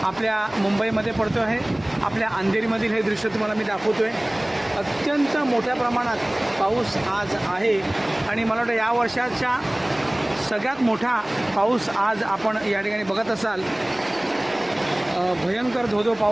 आपल्या मुंबईमध्ये पडतो आहे. आपल्या अंधेरीमधील हे दृश्य तुम्हाला मी दाखवतो आहे. अत्यंत मोठ्या प्रमाणात पाऊस आज आहे आणि मला वाटतं या वर्षाच्या सगळ्यात मोठा पाऊस आज आपण या ठिकाणी बघत असाल. भयंकर धोधो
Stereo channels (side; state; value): right; noise; hum, 27 dB below the sound